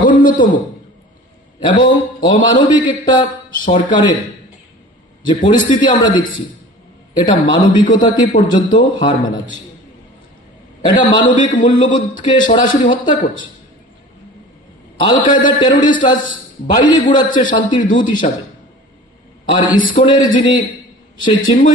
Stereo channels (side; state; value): both; normal; correlation 0.41